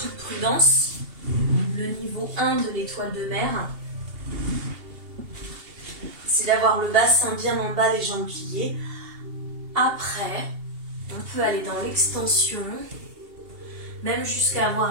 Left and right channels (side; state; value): left; late; 2.8 ms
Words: prudence, le niveau 1 de l'étoile de mer, c'est d'avoir le bassin bien en bas, les jambes pliées. Après, on peut aller dans l'extension, même jusqu'à